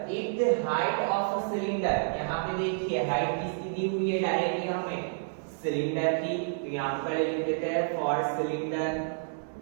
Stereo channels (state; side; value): silent; left; 58 dB below the other